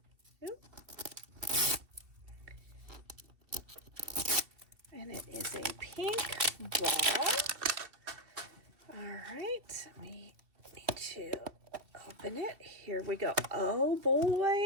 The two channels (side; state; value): left; late; 2.7 ms